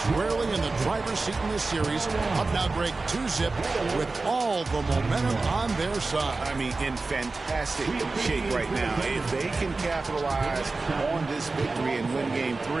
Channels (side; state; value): left; quieter; 3.6 dB